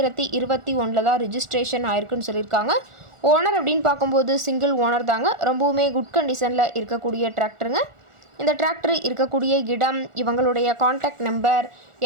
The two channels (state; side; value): late; left; 1.4 ms